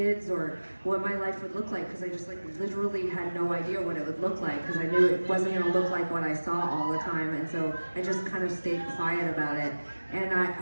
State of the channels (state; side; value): inverted; both; correlation -1.00